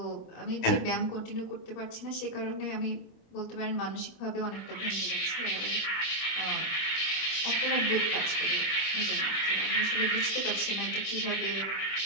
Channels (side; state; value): right; late; 26 ms